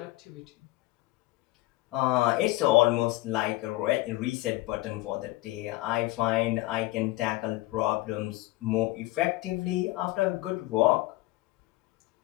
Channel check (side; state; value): right; quieter; 19.1 dB